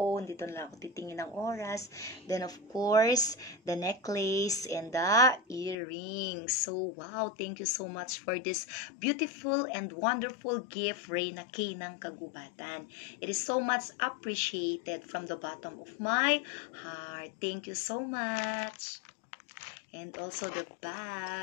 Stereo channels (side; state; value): right; drops out; at 5.8 s